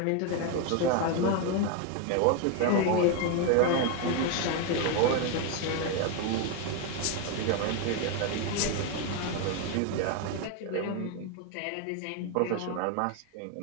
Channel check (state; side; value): different; both; correlation 0.01